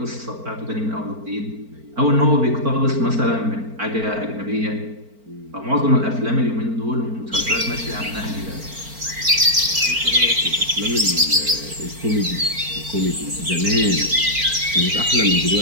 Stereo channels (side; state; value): left; late; 4.4 ms